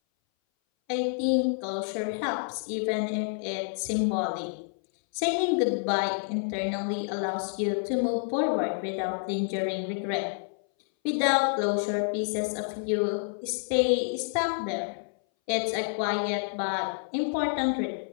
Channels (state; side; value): silent; right; 59 dB below the other